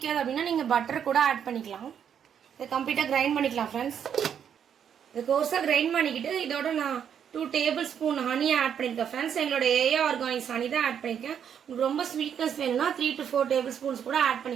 அப்படின்னா நீங்கள் பட்டர் கூட ஆட் பண்ணிக்கலாம். இதை கம்ப்ளீட்டாக கிரைண்ட் பண்ணிக்கலாம் ஃப்ரெண்ட்ஸ். இது கோர்ஸாக கிரைண்ட் பண்ணிக்கிட்டு இதோட நான் 2 டேபிள் ஸ்பூன் ஹனி ஆட் பண்ணியிருக்கேன் ஃப்ரெண்ட்ஸ். எங்களோட ஏஏ ஆர்கானிக்ஸ் ஹனி தான் ஆட் பண்ணியிருக்கேன். உங்களுக்கு ரொம்ப ஸ்வீட்னஸ் வேணும்னா 3 to 4 டேபிள் ஸ்பூன்ஸ் கூட ஆட்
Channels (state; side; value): quieter; left; 8.4 dB